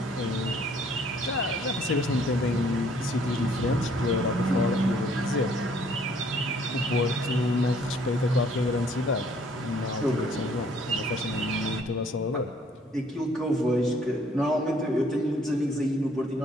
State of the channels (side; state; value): both; normal; correlation 0.61